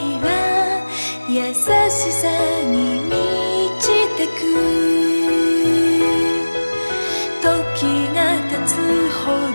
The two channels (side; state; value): both; inverted; correlation -1.00